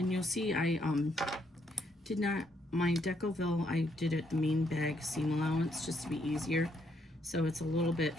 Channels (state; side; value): normal; both; correlation 0.73